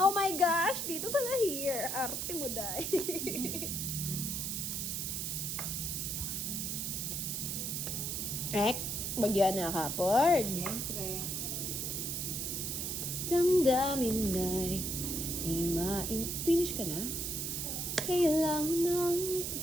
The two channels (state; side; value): noise; right; hiss, 2 dB below the sound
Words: Oh my gosh! Dito pala here. Arte mo, day. Ek, bagyan na kapord. Siyempre. Damdamin na'y di Finish ka na? Kailangan ng...